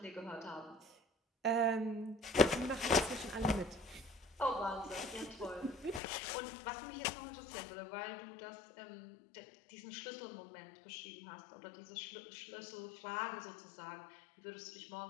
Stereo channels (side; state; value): right; drops out; at 6.0 s